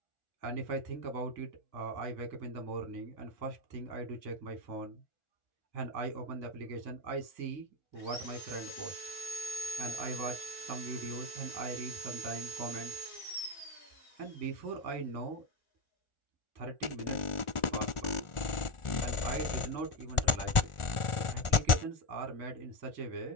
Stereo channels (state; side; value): late; right; 1.4 ms